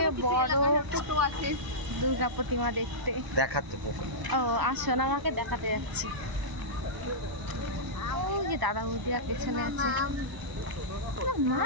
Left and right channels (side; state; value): left; late; 1.0 ms